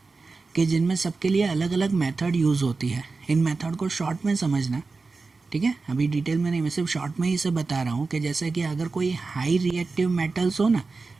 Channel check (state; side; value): quieter; left; 4.0 dB